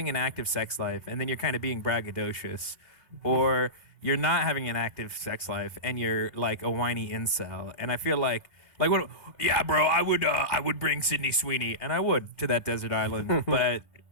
an active sex life and then you're kind of being braggadocious, or you're not having an active sex life and you're like a whiny incel. And I feel like what? Yeah, bro, I would bring Sydney Sweeney, and I would, to that desert island, but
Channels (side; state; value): right; late; 2.5 ms